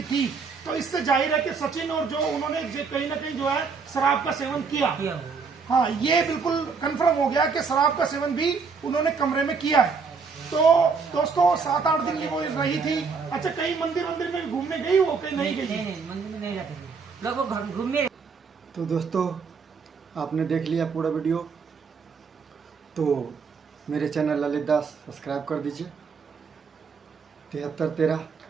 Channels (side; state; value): left; quieter; 5.2 dB